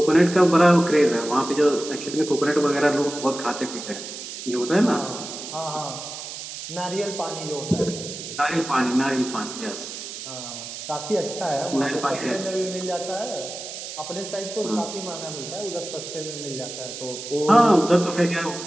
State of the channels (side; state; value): right; noise; hiss, 9 dB below the sound